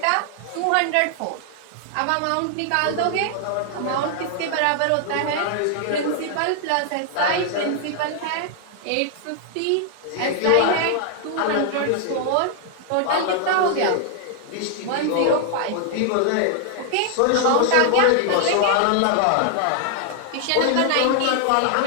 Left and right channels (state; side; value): different; both; correlation 0.00